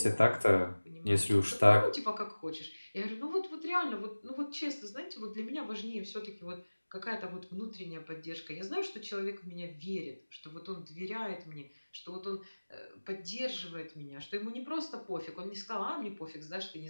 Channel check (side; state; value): both; inverted; correlation -1.00